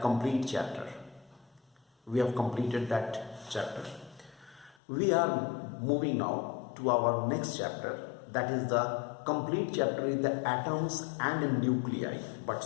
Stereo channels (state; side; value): drops out; right; at 4.8 s